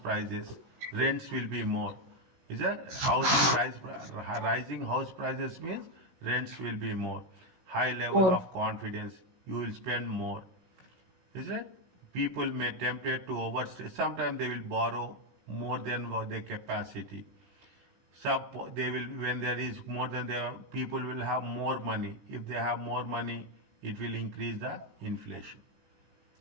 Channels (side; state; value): left; late; 16 ms